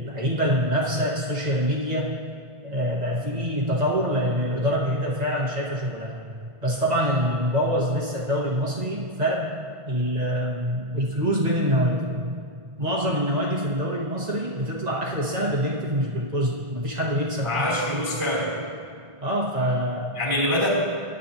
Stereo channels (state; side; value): late; left; 1.5 ms